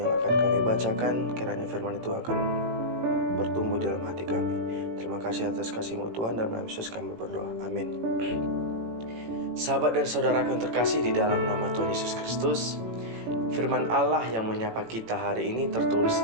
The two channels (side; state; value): left; late; 18 ms